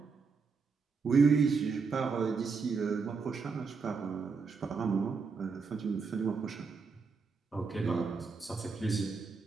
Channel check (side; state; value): left; quieter; 5.0 dB